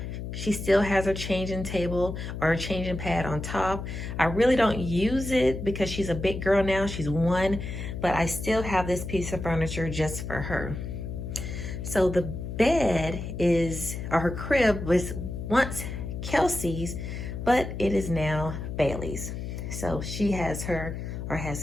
She still has her changing table or her changing pad on top. I really don't use it because she's a big girl now, she's 1, but I still have this piece of furniture just for her. So the bed is, or her crib was once Kelsey's, but it is now Bailey's. So she has her, or has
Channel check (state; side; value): noise; left; hum, 6 dB below the sound